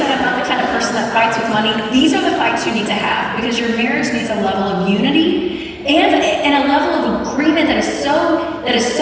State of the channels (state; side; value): identical; both; correlation 1.00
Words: I'm not the kind of person that fights with money, these are the fights you need to have, because your marriage needs a level of unity and a level of agreement that is